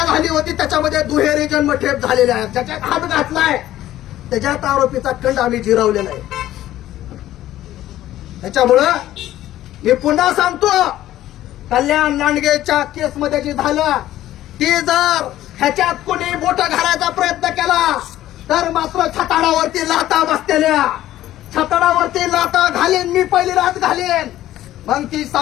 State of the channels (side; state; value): right; quieter; 13.8 dB